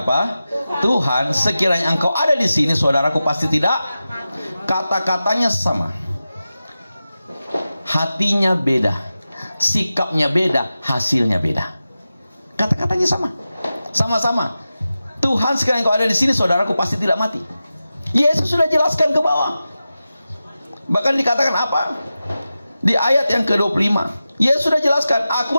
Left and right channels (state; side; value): inverted; both; correlation -0.94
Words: apa? Tuhan, sekiranya engkau ada di sini, saudaraku pasti tidak. Kata-katanya sama. Hatinya beda, sikapnya beda, hasilnya beda. Kata-katanya sama. Sama-sama. Tuhan, sekiranya engkau ada di sini, saudaraku pasti tidak mati. Yesus sudah jelaskan ke bawah. Bahkan dikatakan apa? Di ayat yang ke-25, Yesus sudah jelaskan,